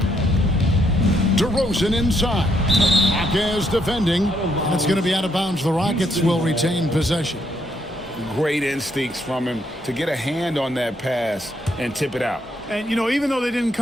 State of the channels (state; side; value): normal; both; correlation 0.74